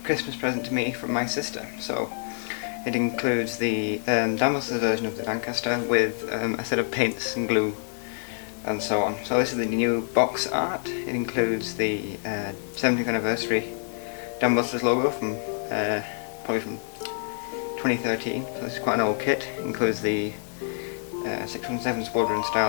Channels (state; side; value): silent; right; digital silence